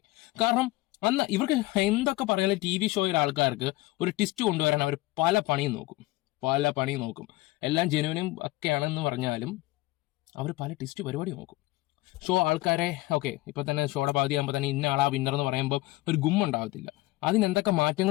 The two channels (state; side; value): quieter; right; 19.7 dB